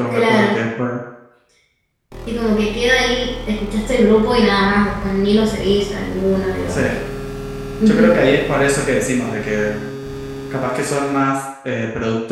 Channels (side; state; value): both; identical; correlation 1.00